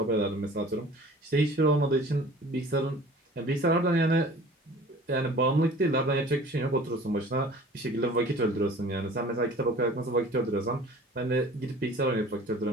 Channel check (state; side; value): normal; both; correlation 0.46